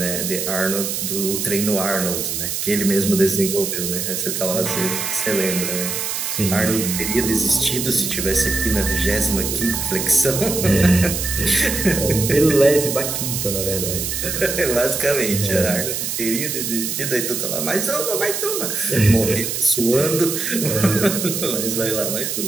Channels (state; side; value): noise; right; hiss, 2 dB below the sound